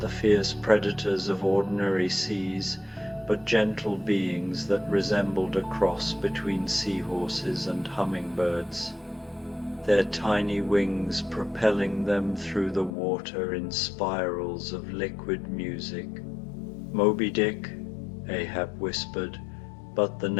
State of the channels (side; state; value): right; drops out; at 13.0 s